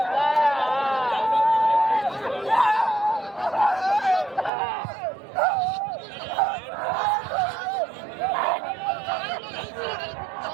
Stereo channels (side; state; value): left; drops out; at 4.5 s